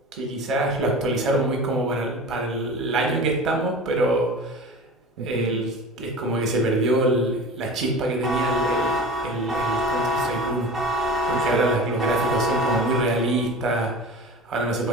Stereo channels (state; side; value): normal; both; correlation 0.35